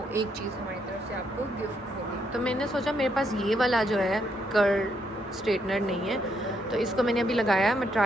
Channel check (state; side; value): normal; both; correlation 0.75